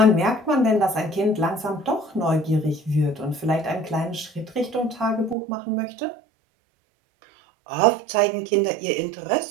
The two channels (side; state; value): left; drops out; at 5.4 s